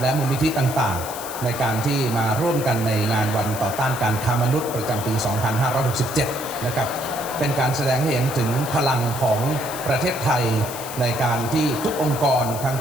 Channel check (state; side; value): noise; left; hiss, 10 dB below the sound